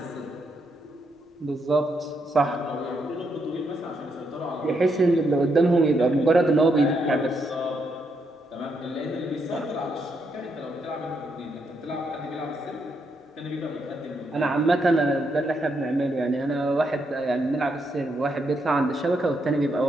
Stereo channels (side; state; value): both; normal; correlation 0.78